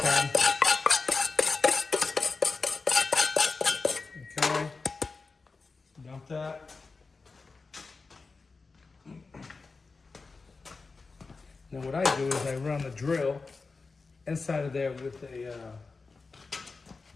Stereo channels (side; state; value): right; quieter; 4.2 dB